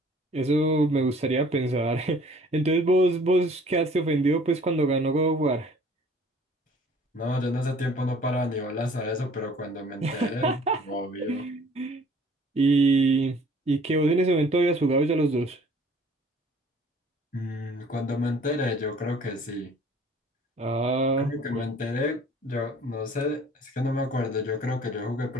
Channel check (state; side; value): normal; both; correlation 0.53